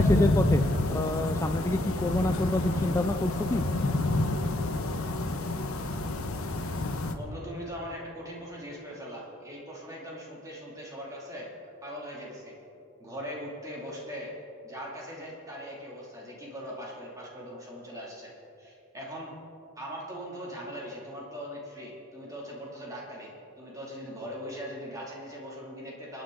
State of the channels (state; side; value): normal; both; correlation 0.71